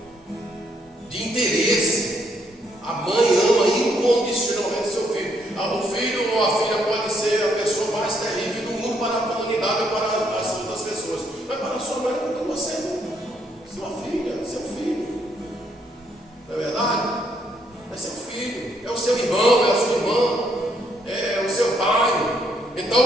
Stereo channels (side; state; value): both; normal; correlation 0.72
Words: de interesse. A mãe ama incondicionalmente seu filho. O filho ou a filha pode ser a pessoa mais terrível do mundo para a comunidade ou para as outras pessoas, mas para a sua mãe, porque você é sua filha, seu filho. Não é verdade? É seu filho, é o seu irmão, é a sua irmã, é o seu pai.